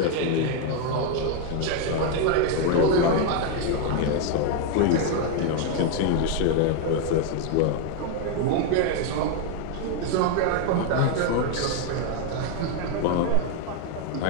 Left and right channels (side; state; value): both; different; correlation 0.01